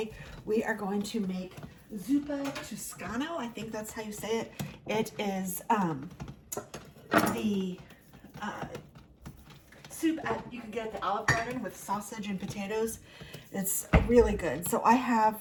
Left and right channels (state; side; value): identical; both; correlation 1.00